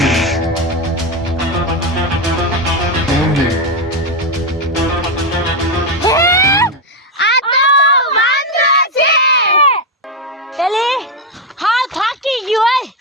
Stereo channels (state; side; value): normal; both; correlation 0.08